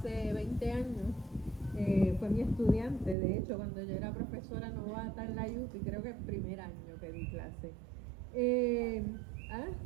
20 años, fue mi estudiante, de hecho, cuando yo era profesora novata en la UPI, creo que el primer año que di clase.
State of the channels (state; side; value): drops out; left; at 3.2 s